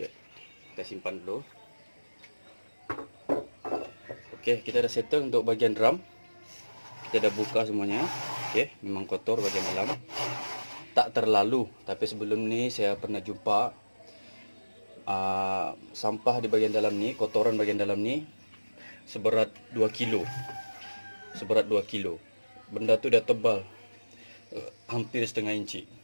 kita simpan dulu. Oke, kita dah settle untuk bagian drum. Kita dah buka semuanya. Oke, memang kotor bagian dalam. Tak terlalu, tapi sebelum ni saya pernah jumpa sampah di bagian dalam ni, kotoran bagian dalam ni seberat 2 kilo. Seberat 2 kilo. Benda tu dah tebal, hampir setengah inci.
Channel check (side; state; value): both; inverted; correlation -1.00